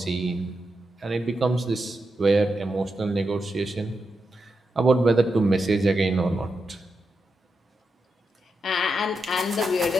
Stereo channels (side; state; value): both; normal; correlation 0.86